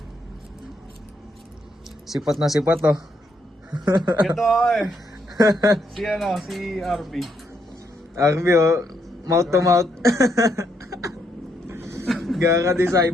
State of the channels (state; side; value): normal; both; correlation 0.76